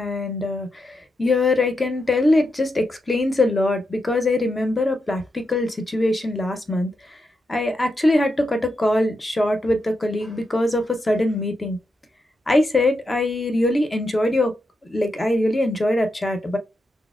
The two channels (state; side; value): normal; both; correlation 0.85